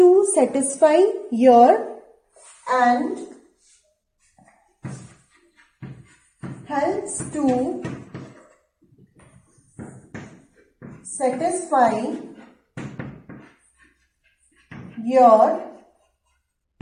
satisfy your and helps to satisfy your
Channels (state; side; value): identical; both; correlation 1.00